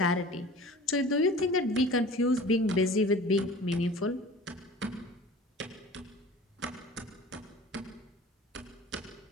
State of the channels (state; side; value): normal; both; correlation 0.42